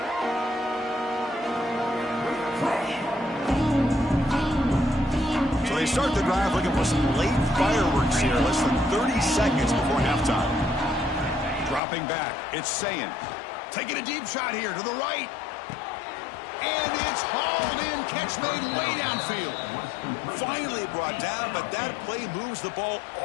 So they start the drive looking for some late fireworks here. Less than 30 seconds before halftime. Dropping back, it's Sayin. Taking a deep shot here to the right. And it's hauled in. Catch made way downfield. Finally brought down, but that play moves the ball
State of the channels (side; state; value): right; drops out; at 11.8 s